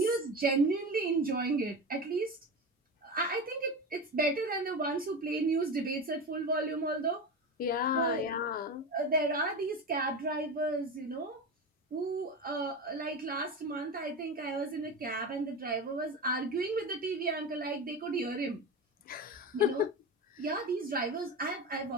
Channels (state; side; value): normal; both; correlation 0.24